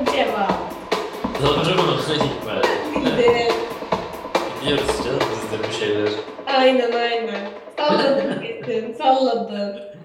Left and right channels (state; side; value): identical; both; correlation 1.00